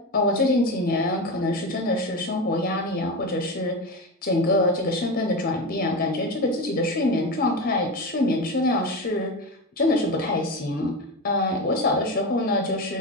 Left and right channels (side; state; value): both; normal; correlation 0.21